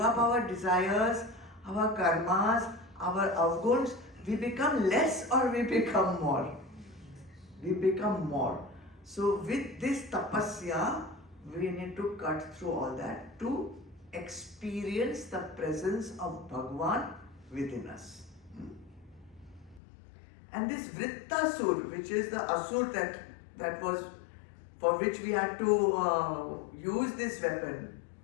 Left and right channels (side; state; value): right; drops out; at 19.8 s